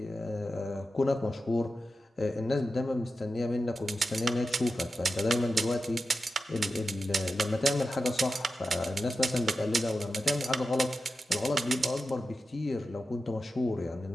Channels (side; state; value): both; normal; correlation 0.91